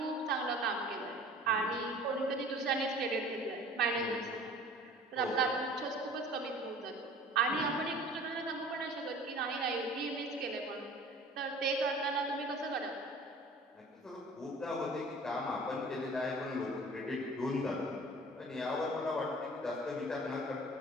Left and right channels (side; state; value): both; normal; correlation 0.46